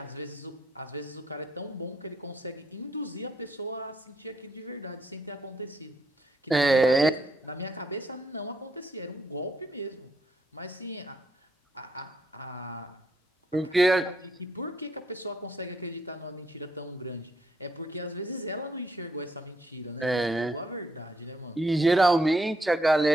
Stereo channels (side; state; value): both; normal; correlation 0.74